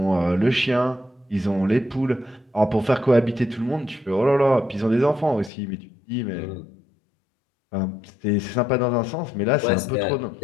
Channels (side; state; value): right; drops out; at 5.5 s